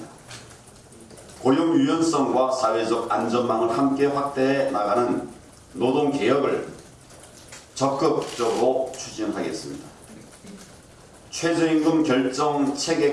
고용 유연성과 사회적 안전망을 함께 확대해 나가는 노동개혁을 적극적으로 추진하겠습니다. 최저임금 결정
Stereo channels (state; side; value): identical; both; correlation 1.00